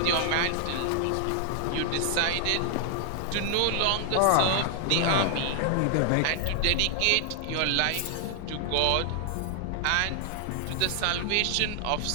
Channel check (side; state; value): both; different; correlation 0.00